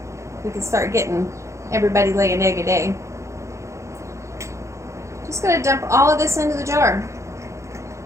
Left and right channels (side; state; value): left; late; 0.14 ms